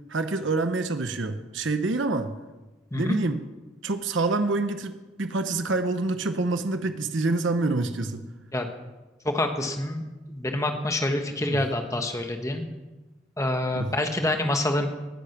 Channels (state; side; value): normal; both; correlation 0.56